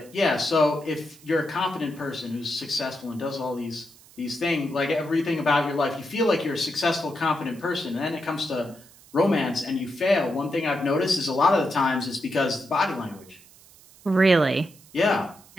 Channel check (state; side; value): noise; right; hiss, 24 dB below the sound